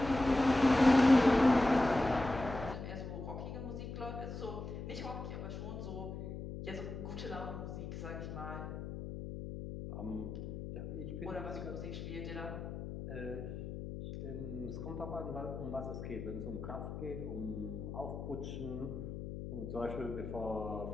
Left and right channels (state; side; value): noise; left; hum, 7 dB below the sound